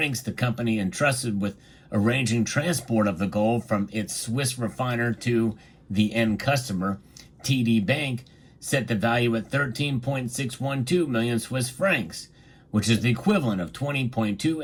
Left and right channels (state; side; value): identical; both; correlation 1.00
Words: the company entrusted with arranging transport of the gold from its Swiss refiner to the end customer, TD Bank, set the value at 13.612 million Swiss francs, which is the equivalent of